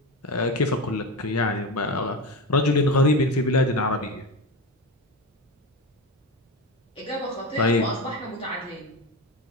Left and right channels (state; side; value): normal; both; correlation 0.21